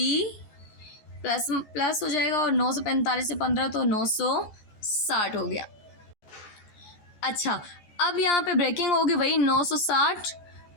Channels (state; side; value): late; right; 14 ms